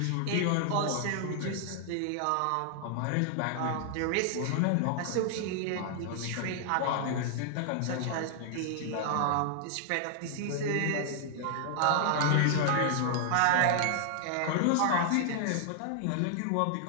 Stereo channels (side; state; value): both; different; correlation 0.00